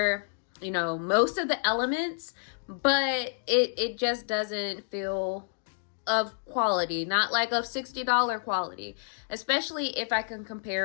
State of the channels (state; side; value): silent; right; digital silence